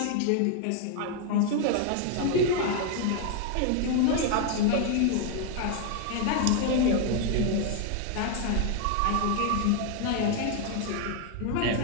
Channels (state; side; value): different; both; correlation 0.00